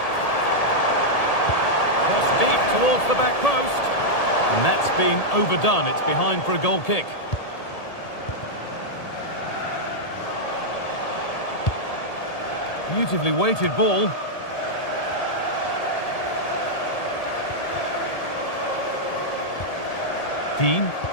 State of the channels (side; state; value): right; late; 1.8 ms